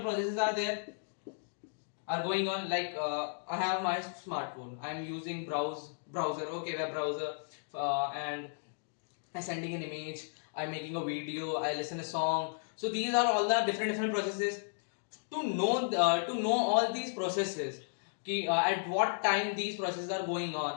processes are going on, like I have my smartphone, I am using browser, okay, web browser, and I sending an image, I'm making a video, I listen a song. So these are all the different processes. To know all these processes, at what time these processes are going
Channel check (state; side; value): silent; right; digital silence